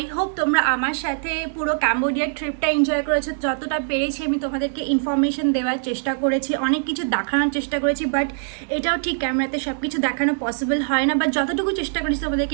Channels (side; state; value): left; silent; digital silence